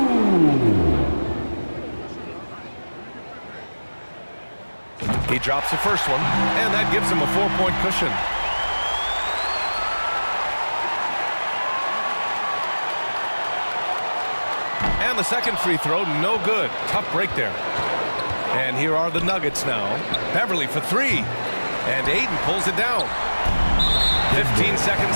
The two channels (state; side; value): inverted; both; correlation -1.00